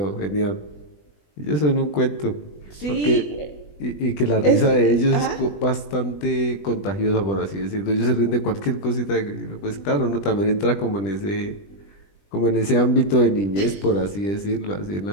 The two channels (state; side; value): late; right; 20 ms